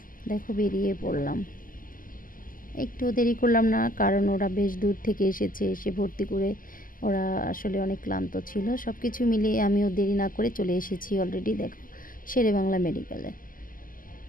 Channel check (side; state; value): right; late; 0.41 ms